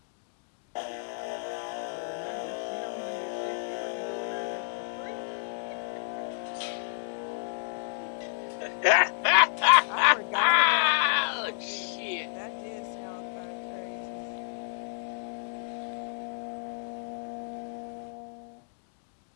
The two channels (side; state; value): right; silent; digital silence